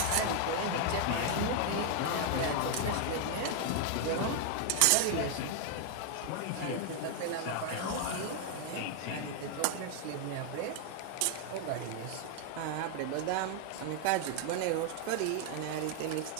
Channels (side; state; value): both; different; correlation 0.00